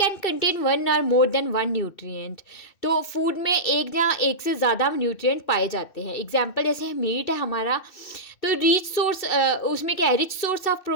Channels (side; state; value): right; late; 2.6 ms